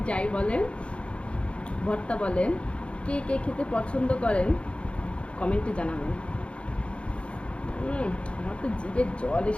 যাই বলেন, ভর্তা বলেন, কে কে খেতে পছন্দ করেন কমেন্টে জানাবেন। আমার তো জিভে জল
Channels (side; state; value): right; late; 0.059 ms